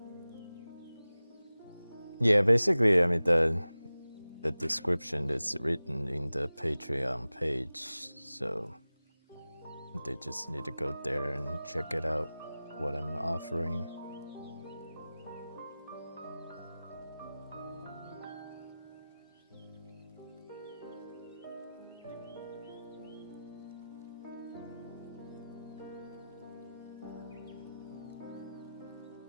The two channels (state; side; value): inverted; both; correlation -0.97